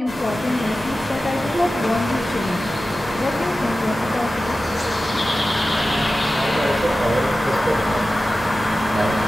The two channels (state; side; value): normal; both; correlation 0.94